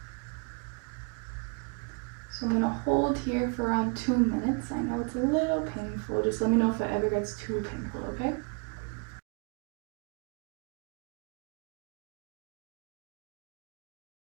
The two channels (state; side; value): quieter; left; 36.5 dB